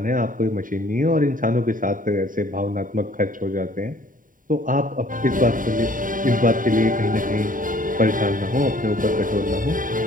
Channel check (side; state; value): left; late; 0.39 ms